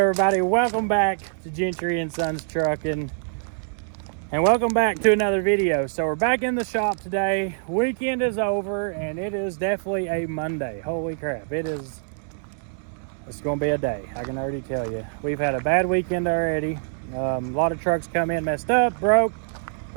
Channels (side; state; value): left; silent; digital silence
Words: Welcome back to Gentry and Sons Trucking, and welcome back to another video. So we're back in the shop today. Weekend is over, and it is definitely a Monday. Holy crap! It's gonna be a day. I can already tell you. We've had a bad weekend already. A lot of trucks come in messed up, broke,